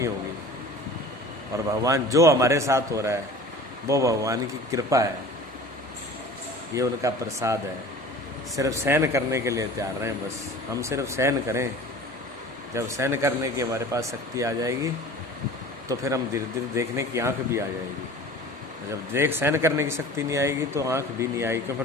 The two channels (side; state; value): both; normal; correlation 0.41